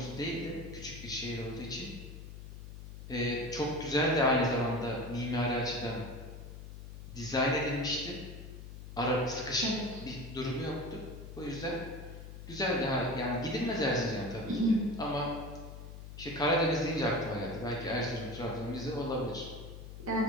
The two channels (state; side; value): noise; left; hum, 12 dB below the sound